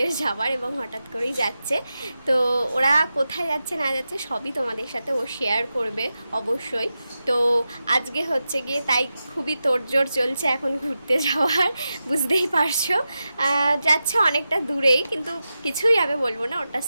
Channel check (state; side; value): inverted; both; correlation -0.91